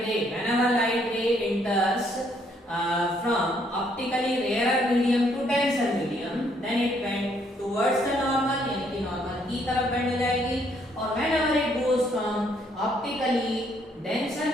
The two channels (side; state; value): both; normal; correlation 0.69